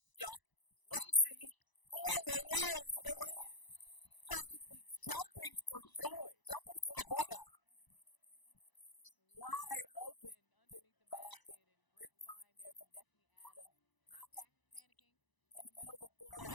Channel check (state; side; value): late; right; 1.0 ms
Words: Lacey all alone for the lay-in. Practically jumping for joy, jumping for the ball. Wide open underneath the basket, and great find there from Destiny Adams. Not panicking in the middle of the floor as